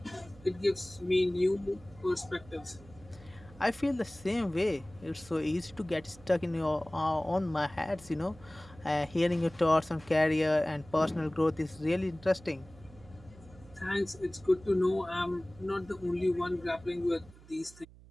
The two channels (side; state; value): right; noise; hum, 22 dB below the sound